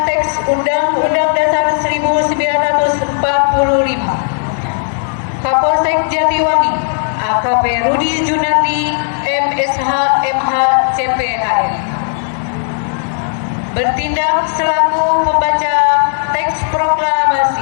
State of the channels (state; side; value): silent; right; digital silence